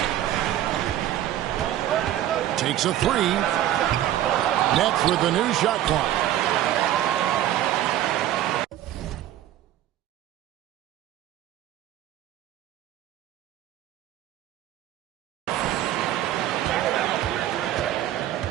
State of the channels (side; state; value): left; quieter; 12.6 dB